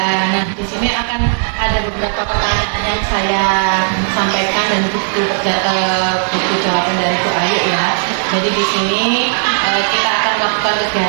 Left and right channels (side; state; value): left; silent; 62 dB below the other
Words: Nah, di sini akan ada beberapa pertanyaan yang saya sampaikan dan buku jawaban dari Bu Ayu ya. Jadi di sini kita akan melakukan